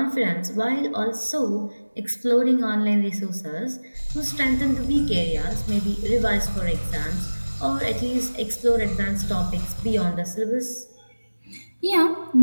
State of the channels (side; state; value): both; inverted; correlation -1.00